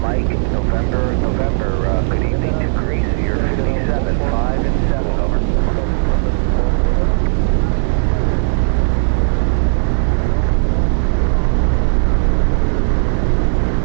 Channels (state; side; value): silent; left; digital silence